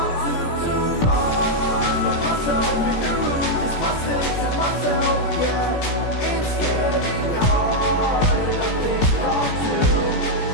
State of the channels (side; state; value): right; late; 17 ms